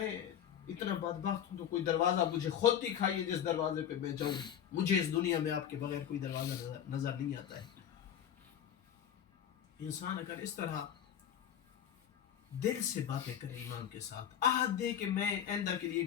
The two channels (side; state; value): right; quieter; 9.4 dB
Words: اتنا بدبخت ہوں تو کوئی دروازہ مجھے خود دکھائیے جس دروازے پہ میں جاؤں. مجھے اس دنیا میں آپ کے بغیر کوئی دروازہ نظر نہیں آتا ہے. انسان اگر اس طرح دل سے باتیں کرے امام کے ساتھ, عہد دے کہ میں آئندہ کے